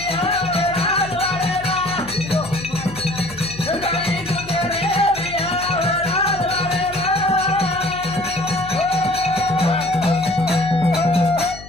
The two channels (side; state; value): left; noise; hum, 16 dB below the sound